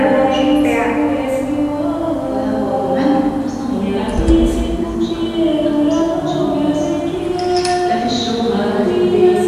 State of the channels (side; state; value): both; identical; correlation 1.00